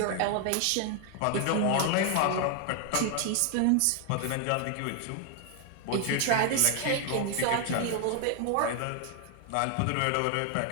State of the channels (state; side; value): different; both; correlation 0.00